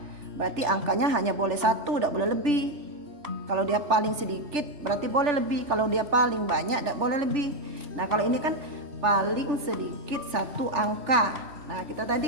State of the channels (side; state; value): left; late; 3.4 ms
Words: berarti angkanya hanya boleh 1, tidak boleh lebih. Kalau dia paling sedikit berarti boleh lebih, kalau dia paling banyak tidak boleh lebih. Nah kalau ini kan paling sedikit 1 angka. Nah